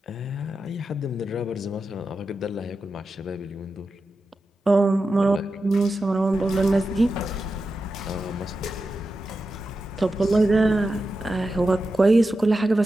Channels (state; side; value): normal; both; correlation 0.90